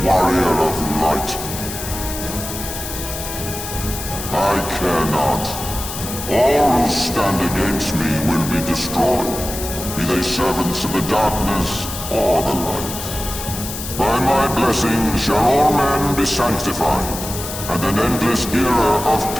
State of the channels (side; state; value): left; noise; hiss, 8 dB below the sound